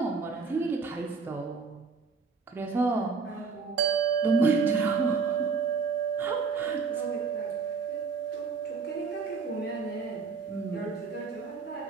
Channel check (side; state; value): left; quieter; 5.0 dB